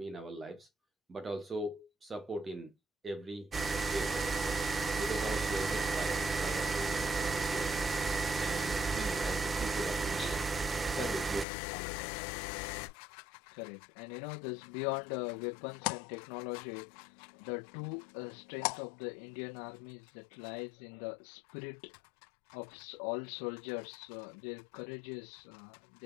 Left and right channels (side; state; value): right; drops out; at 11.5 s